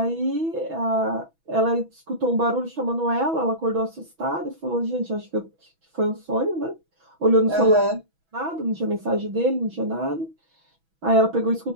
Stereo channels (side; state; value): left; late; 6.1 ms